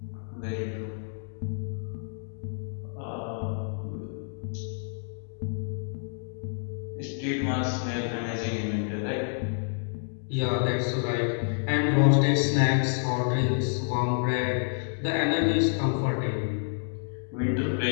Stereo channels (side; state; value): right; silent; digital silence